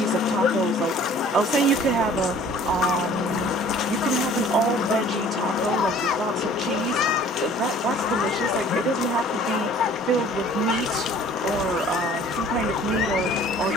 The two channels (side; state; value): both; normal; correlation 0.51